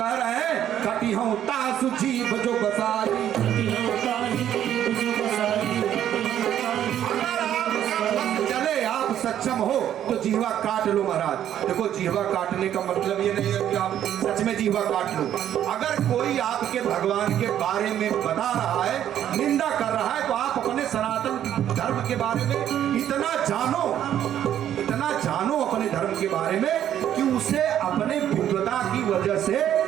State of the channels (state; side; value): quieter; left; 10.7 dB